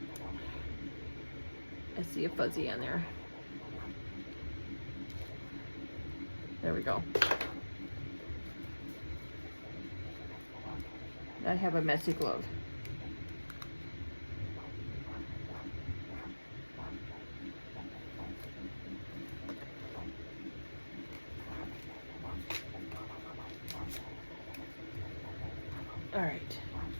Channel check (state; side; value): inverted; both; correlation -1.00